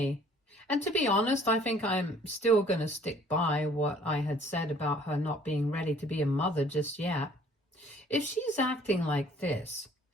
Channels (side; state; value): both; normal; correlation 0.56